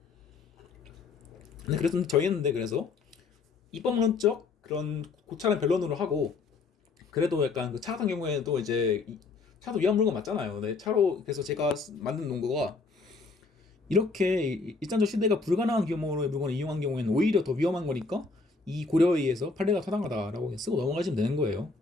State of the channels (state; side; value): quieter; right; 4.2 dB